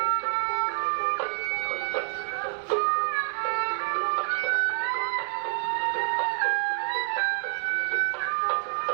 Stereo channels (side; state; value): left; silent; 60 dB below the other